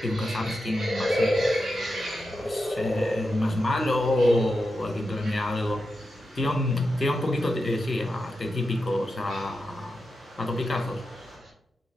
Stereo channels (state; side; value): normal; both; correlation 0.89